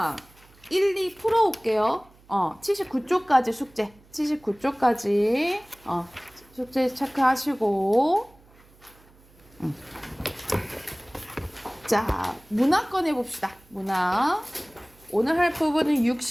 1, 2 풀어올게요. 79쪽까지 숙제. 79쪽까지 숙제 체크하시고 자, 문화 꺼내봅시다. 문화. 오늘 할 부분은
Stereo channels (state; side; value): noise; right; hum, 28 dB below the sound